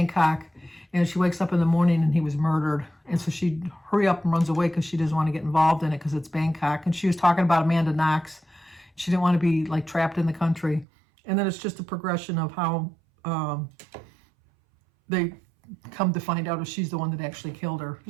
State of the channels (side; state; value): left; drops out; at 10.9 s